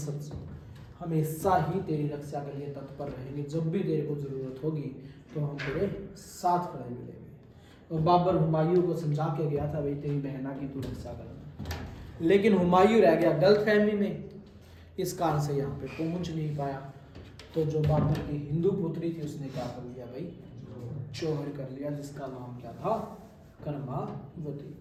हमेशा ही तेरी रक्षा के लिए तत्पर रहेंगे। जब भी तेरे को जरूरत होगी तो हम तेरे साथ खड़े मिलेंगे। और बाबर हुमायूं को समझा के गया था भाई तेरी बहना की तू रक्षा करना। लेकिन हुमायूं रह गया गलतफहमी में। इस कारण से यहाँ पे पहुंच नहीं पाया। तो जो बाबर की हिंदू पुत्री थी उसने क्या कर लिया भाई? जौहर कर लिया, जिसका नाम क्या था? कर्मावती।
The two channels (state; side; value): identical; both; correlation 1.00